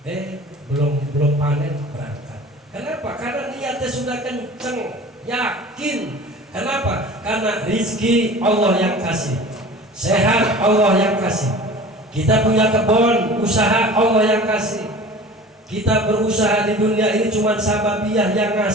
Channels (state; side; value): normal; both; correlation 0.41